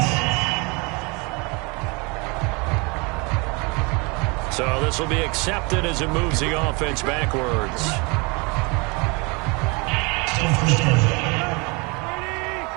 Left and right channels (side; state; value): left; quieter; 28.9 dB